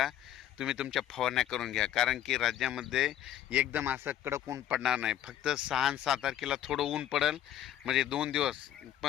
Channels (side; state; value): right; quieter; 11.4 dB